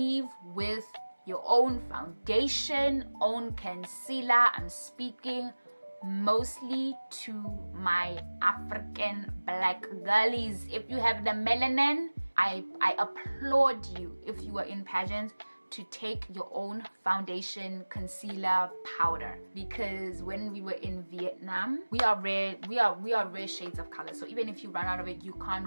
with your own foundation, own concealer. I'm speaking mostly to my African black girlies. If you have the melanin, I applaud you, if you are in pageants, to take your own foundation, concealer, powder, because when we were in Vietnam, we are rare shades of color. So even if you run out of it, you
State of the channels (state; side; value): inverted; both; correlation -1.00